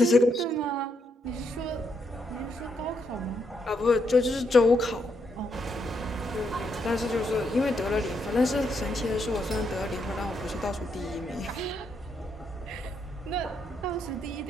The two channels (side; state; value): both; normal; correlation 0.78